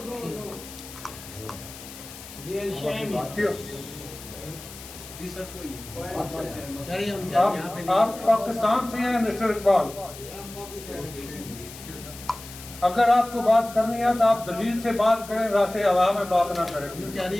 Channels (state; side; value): noise; left; hiss, 15 dB below the sound